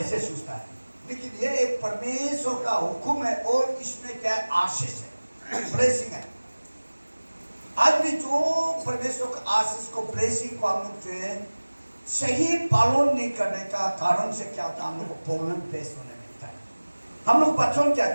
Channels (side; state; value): both; inverted; correlation -1.00